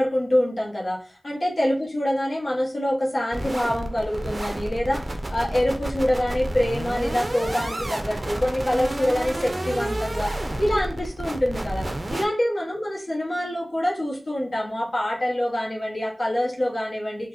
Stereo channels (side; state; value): both; normal; correlation 0.98